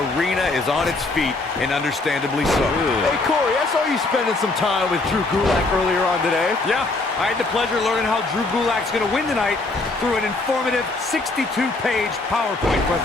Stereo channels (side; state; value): right; quieter; 3.3 dB